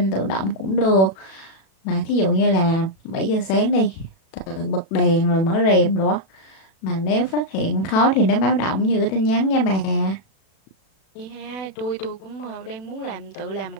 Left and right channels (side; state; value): right; late; 37 ms